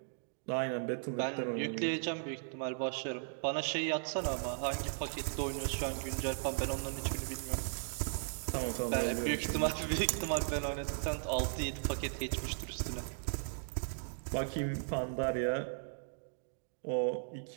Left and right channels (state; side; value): silent; left; digital silence